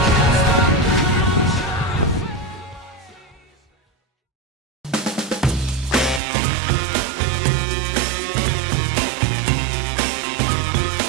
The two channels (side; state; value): left; drops out; at 6.2 s